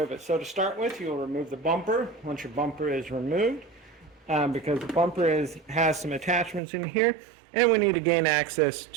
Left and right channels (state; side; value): drops out; left; at 6.6 s